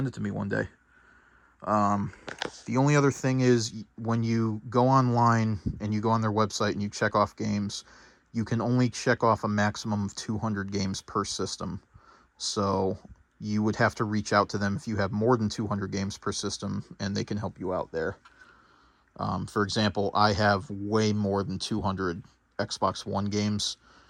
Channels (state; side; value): identical; both; correlation 1.00